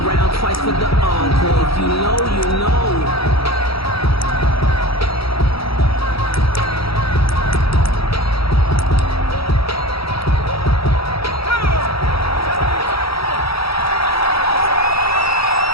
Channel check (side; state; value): right; late; 0.76 ms